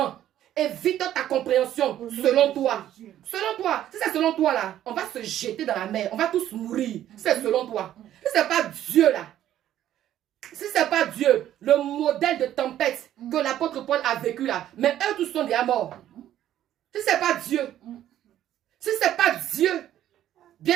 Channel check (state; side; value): quieter; left; 11.9 dB